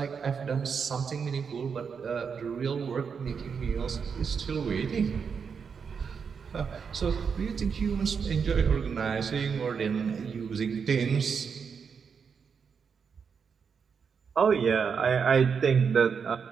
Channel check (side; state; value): left; quieter; 6.2 dB